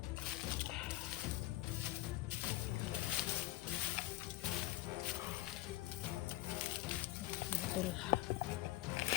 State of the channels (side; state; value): right; quieter; 16.8 dB